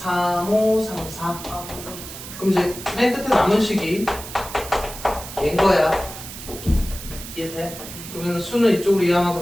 5, 3, 4. 아, 5분. 그럼 이제 맨 끝에 남은 식이 얘인 거야. 이해돼? 그러면 수는 이쪽으로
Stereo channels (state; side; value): noise; right; hiss, 12 dB below the sound